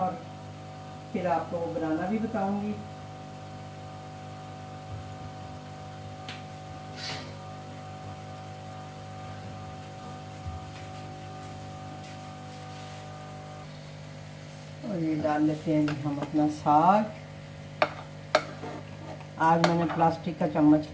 फिर आपको बनाना भी बताऊंगी। और ये डाल लेते हैं जी हम अपना साग। आज मैंने प्लास्टिक का चम्मच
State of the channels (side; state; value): both; identical; correlation 1.00